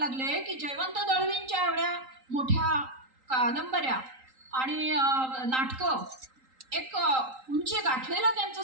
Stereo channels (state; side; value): late; left; 3.8 ms